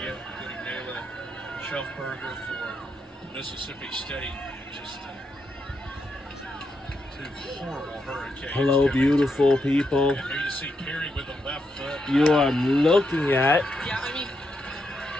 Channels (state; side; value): normal; both; correlation 0.82